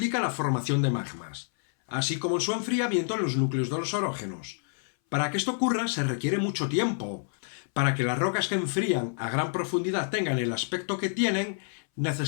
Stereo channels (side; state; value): right; silent; 59 dB below the other